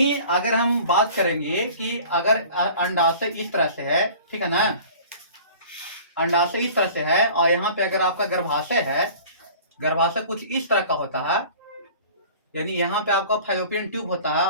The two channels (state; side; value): inverted; both; correlation -0.45